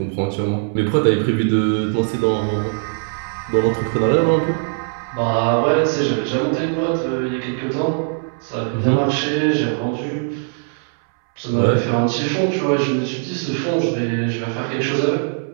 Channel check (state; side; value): silent; left; 62 dB below the other